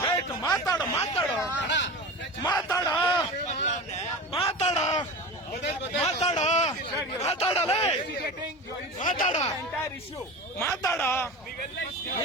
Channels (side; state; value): both; normal; correlation 0.30